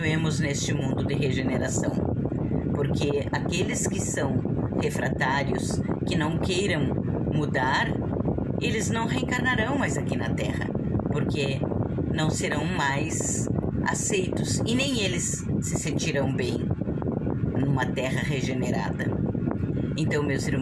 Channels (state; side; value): identical; both; correlation 1.00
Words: neste mundo de regeneração. Porque aqueles que são refratários, que não queiram mudar, eles não reencarnarão mais aqui na Terra, porque não serão mais aceitos e nem eles se sentirão bem numa Terra regenerada. Então, meus